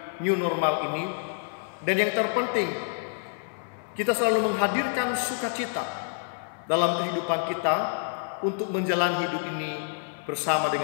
new normal ini. Dan yang terpenting, kita selalu menghadirkan sukacita dalam kehidupan kita untuk menjalani hidup ini bersama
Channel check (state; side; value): silent; right; 60 dB below the other